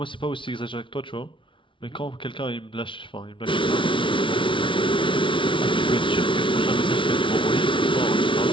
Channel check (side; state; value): right; late; 0.25 ms